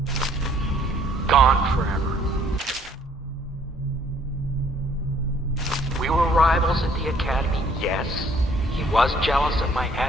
gone forever. We were rivals at the academy, yes. He was jealous of my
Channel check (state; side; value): normal; both; correlation 0.61